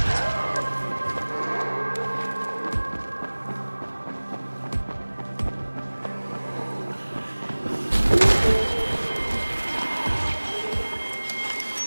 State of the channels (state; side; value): inverted; both; correlation -1.00